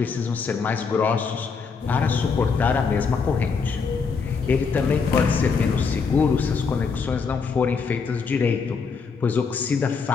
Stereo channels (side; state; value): right; quieter; 5.3 dB